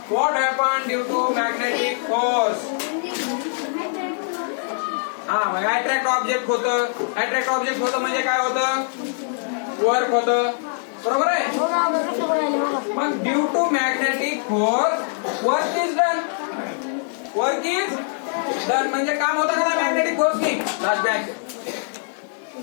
What happen due to magnetic force. Attract object होतं. अट्रॅक्ट ऑब्जेक्ट होतं म्हणजे काय होतं, वर्क होतं. बरोबर आहे. मग due to magnetic force work is done. Work is done म्हणजे काम होतं का मॅग्नेटिक फोर्सनी. लास्ट बॅच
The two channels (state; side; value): silent; right; 64 dB below the other